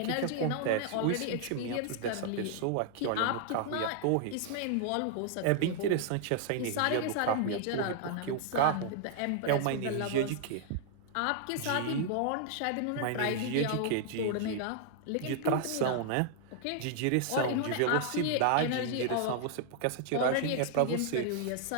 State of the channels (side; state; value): both; different; correlation 0.00